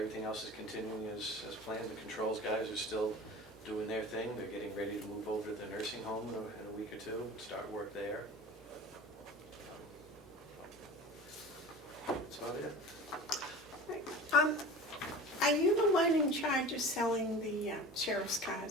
else is continuing as planned. The controls guys are still doing their thing. They're getting ready to move over to the nursing home in a week or two, start work there. That's about it. Right. Are you the one in charge of selling the sheriff's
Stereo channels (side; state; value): both; normal; correlation 0.37